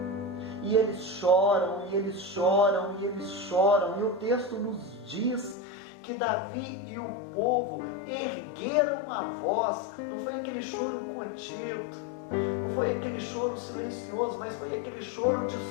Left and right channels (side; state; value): right; drops out; at 5.6 s